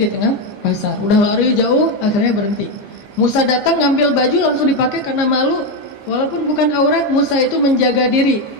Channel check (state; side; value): late; right; 15 ms